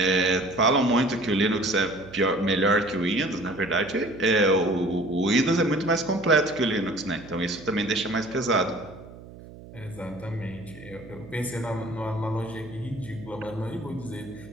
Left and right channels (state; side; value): noise; right; hum, 17 dB below the sound